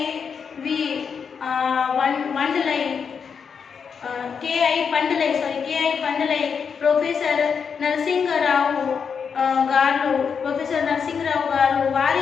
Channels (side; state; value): right; quieter; 6.4 dB